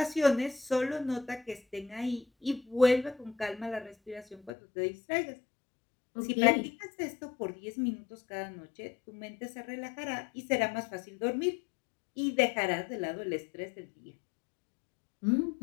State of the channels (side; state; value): right; drops out; at 4.5 s